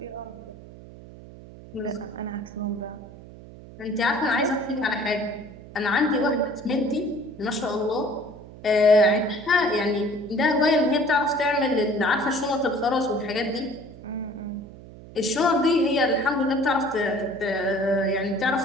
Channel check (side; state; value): right; noise; hum, 17 dB below the sound